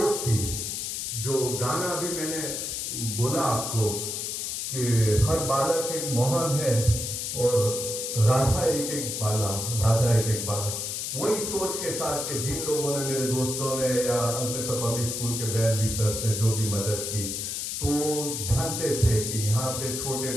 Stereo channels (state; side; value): noise; left; hiss, 3 dB below the sound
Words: थी। जो गाना अभी मैंने बोला आपको कि हर बालक एक मोहन है और राधा एक एक बाला, वही सोच के साथ के जिन लोगों ने, मेरे दोस्तों ने या अंकलेश्वर पब्लिक स्कूल के वेल विशर्स ने जो भी मदद की, तो जानते थे कि यहाँ पे छोटे